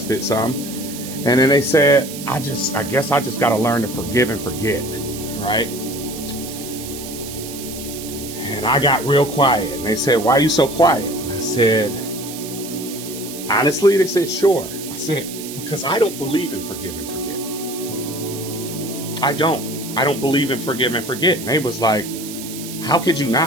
it some. And then they said, I guess I just got to learn to forgive and forget, right? And I got real quiet, and they said, why are you so quiet? And I said, honestly, they said, sure. I said, because I don't believe in forgive and forget. I don't believe in forgive and forget. And they was like, how could you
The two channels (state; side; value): noise; right; hiss, 11 dB below the sound